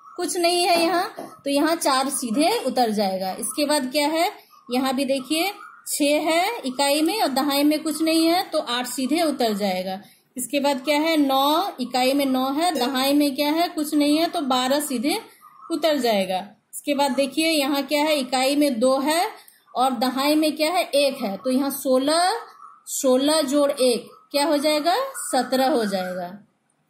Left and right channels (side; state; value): both; identical; correlation 1.00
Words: कुछ नहीं है यहाँ। तो यहाँ 4 सीधे उतर जाएगा। इसके बाद क्या है, यहाँ भी देखिए 6 है इकाई में और दहाई में कुछ नहीं है, तो 8 सीधे उतर जाएगा। इसके बाद क्या है, 9 इकाई में 9 है, दहाई में क्या है, कुछ नहीं है, तो 12 सीधे उतर जाएगा। इसके बाद देखिए यहाँ क्या है, इकाई में 2 है और दहाई में क्या है, 1 है। तो यहाँ 16 जोड़ 1 क्या हो जाएगा, 17 हो जाएगा।